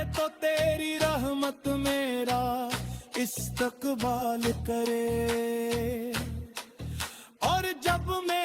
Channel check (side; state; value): both; identical; correlation 1.00